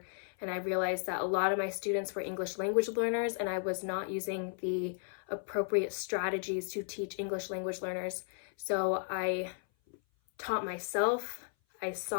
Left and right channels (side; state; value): right; silent; 55 dB below the other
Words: and I realized that a lot of my students were English language learners, and I was not using the appropriate strategies to teach English language learners. So I taught myself, I